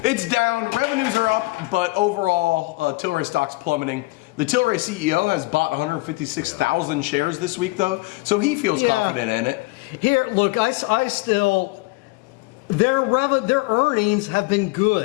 It's down. Revenues are up, but overall, Tilray stock's plummeting. The Tilray CEO has bought 156,000 shares this week, though, so he feels confident in it. Here, look, I still their earnings have been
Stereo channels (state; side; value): quieter; right; 22.9 dB